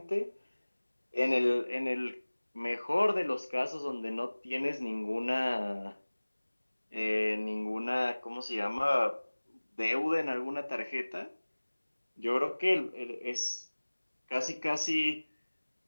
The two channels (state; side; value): inverted; both; correlation -1.00